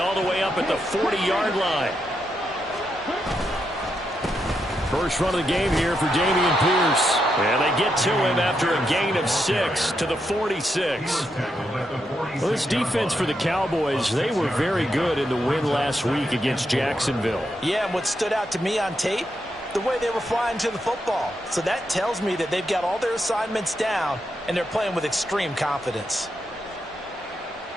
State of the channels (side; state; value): both; normal; correlation 0.83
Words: the way up at the 40-yard line. First run of the game here for Dameon Pierce. And they get to him after a gain of 6 to the 46. Well, this defense for the Cowboys, they were very good in the win last week against Jacksonville. Yeah, and what stood out to me on tape, the way they were flying to the football. So that tells me that they've got all their assignments down, and they're playing with extreme confidence.